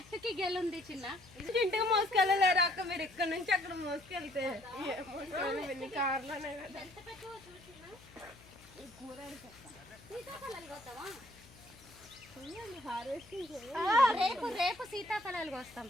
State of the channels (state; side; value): noise; left; hum, 23 dB below the sound